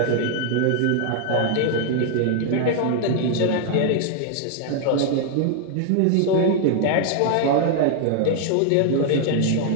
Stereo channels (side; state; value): both; different; correlation 0.00